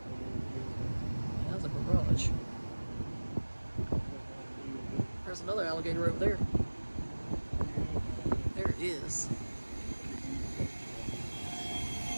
That's a barrage. There's another alligator over there. There it is.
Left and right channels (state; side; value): inverted; both; correlation -1.00